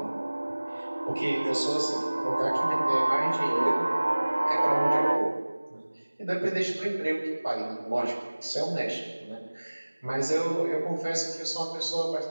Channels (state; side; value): inverted; both; correlation -1.00